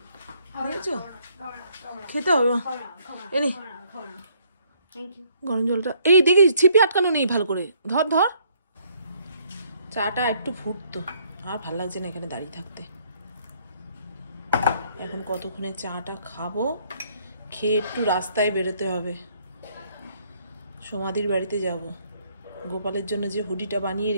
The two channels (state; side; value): inverted; both; correlation -0.66